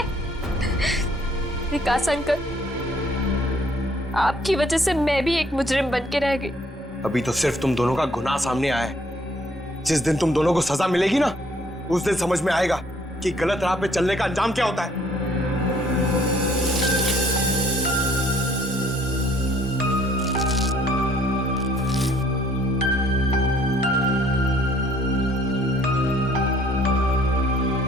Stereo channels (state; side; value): normal; both; correlation 0.62